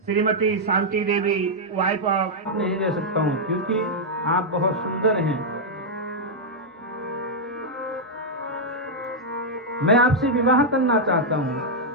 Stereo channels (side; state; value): both; normal; correlation -0.04